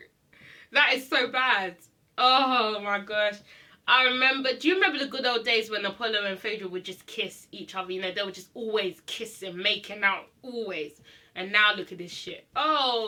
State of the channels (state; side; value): identical; both; correlation 1.00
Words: That is so bad. Oh my gosh. Do you remember the good old days when Apollo and Phaedra would just kiss each other? You know, they would just always kissing, making out, always. And now look at this shit.